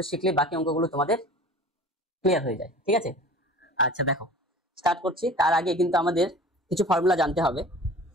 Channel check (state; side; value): normal; both; correlation 0.41